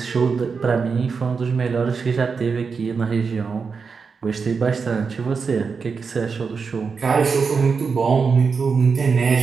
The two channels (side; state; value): left; quieter; 5.3 dB